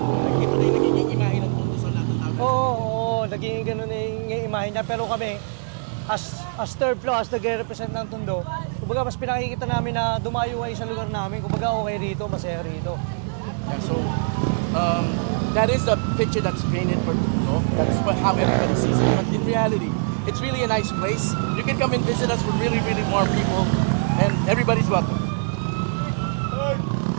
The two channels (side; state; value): left; silent; 62 dB below the other